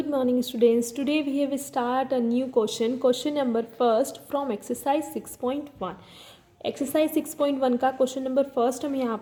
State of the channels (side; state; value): both; identical; correlation 1.00